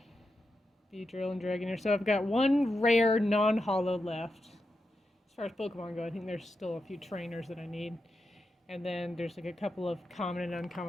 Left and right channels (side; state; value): both; normal; correlation 0.87